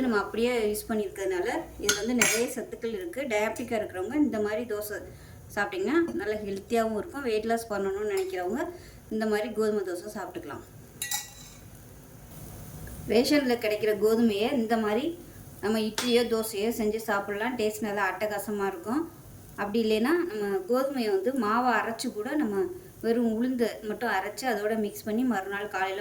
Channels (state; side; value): identical; both; correlation 1.00